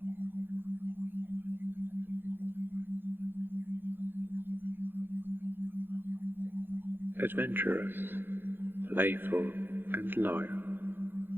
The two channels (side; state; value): left; late; 0.10 ms